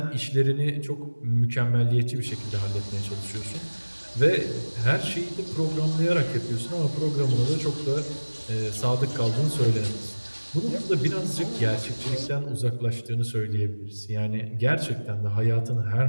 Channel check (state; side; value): inverted; both; correlation -1.00